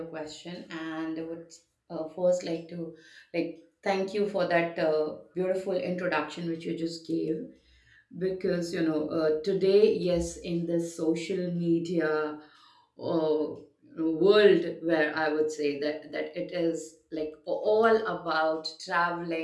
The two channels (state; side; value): identical; both; correlation 1.00